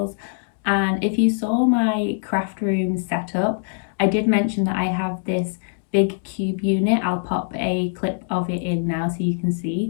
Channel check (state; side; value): silent; right; digital silence